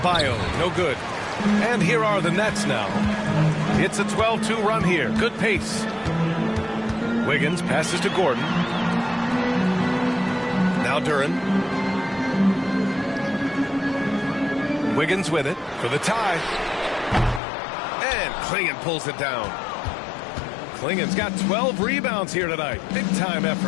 no good. And here are the Nets now. It's a 12-2 run here. Good pace. Wiggins passes to Gordon. Now Duren. Wiggins with it for the tie. And And Clingan pulls it down. Klingen's got 12 rebounds here tonight. Big-time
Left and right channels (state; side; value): drops out; right; at 17.4 s